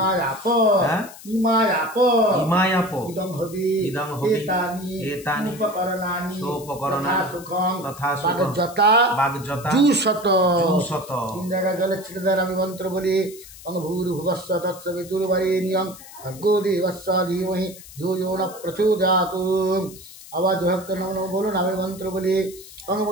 হ্যাঁ ইমায়াপ ইমায়াপ ইদং হবি ইদং হবি এতানি উপকরণানি সোপকরণানি সুখং তথা সুখং বাগযতা বাগযতা জুশত জুশত। 3 জায়গায় জলে ছেড়ে দেন আমি মন্ত্র বলি ভূর্ভুবস্ব তৎসবিতুর্বরেণ্যং ভর্গো দেবস্য ধীমহি ধিয়ো ন প্রচোদয়াৎ। আওয়াজ ভক্ত নম বলুন আমি মন্ত্র বলি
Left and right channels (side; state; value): left; noise; hiss, 18 dB below the sound